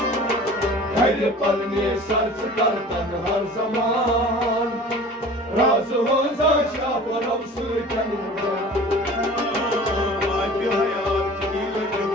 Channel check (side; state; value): both; normal; correlation 0.43